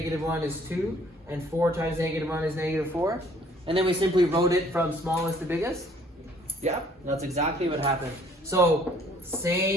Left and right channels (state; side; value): normal; both; correlation 0.59